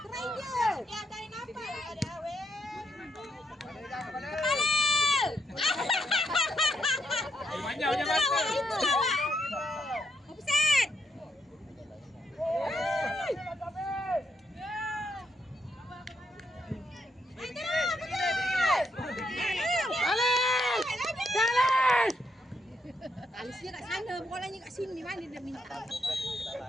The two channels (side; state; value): both; normal; correlation 0.77